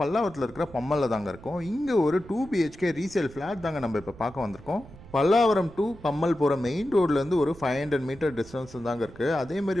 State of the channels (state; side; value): noise; right; rumble, 20 dB below the sound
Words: இருக்கிற பம்மலில் தாங்க இருக்கோம். இங்கே ஒரு 2 BHK ரீசேல் ஃப்ளாட் தாங்க நம்ம இப்போ பார்க்க வந்திருக்கோம். பல்லாவரம் டு பம்மல் போகிற மெயின் ரோட்லேருந்து ஒரு 500 மீட்டர் டிஸ்டன்ஸ் தாங்க இருக்குது.